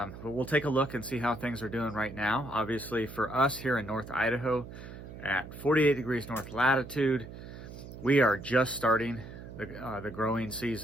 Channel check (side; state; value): right; noise; hum, 13 dB below the sound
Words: we'll take a look and see how things are doing right now. Obviously for us here in North Idaho at 48 degrees north latitude, we are just starting the growing